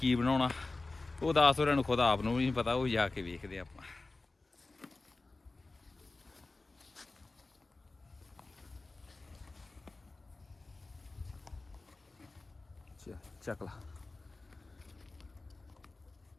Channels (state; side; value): quieter; right; 3.3 dB